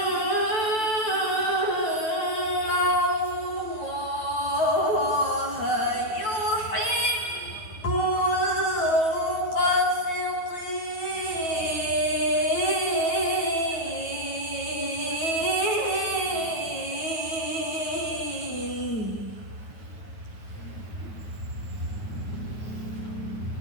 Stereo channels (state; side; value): late; right; 9.4 ms